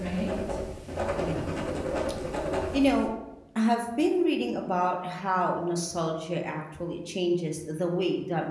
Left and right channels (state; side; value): identical; both; correlation 1.00